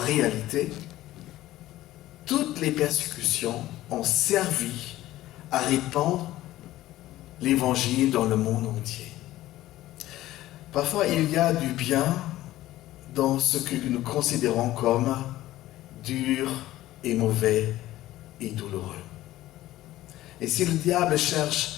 toutes les persécutions ont servi à répandre l'Évangile dans le monde entier. Parfois, il y a du bien dans ce que nous considérons comme dur et mauvais et douloureux. Et si le diable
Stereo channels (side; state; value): right; quieter; 15.4 dB